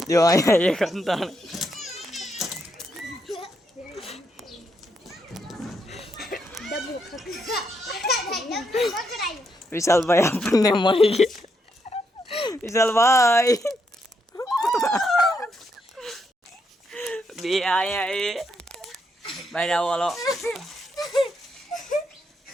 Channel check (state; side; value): normal; both; correlation 0.78